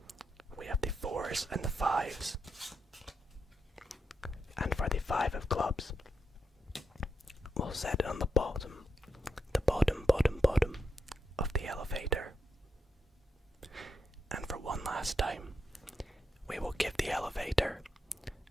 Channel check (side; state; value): both; normal; correlation 0.83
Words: we have the 4s and the 5s. And for the 5 of clubs, we'll set it on the bottom of the elevator. And for one last time, we will give the elevator